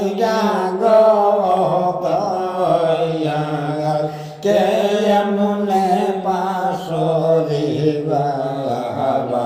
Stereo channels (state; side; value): identical; both; correlation 1.00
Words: গো দয়াল, কেমনে পাশরে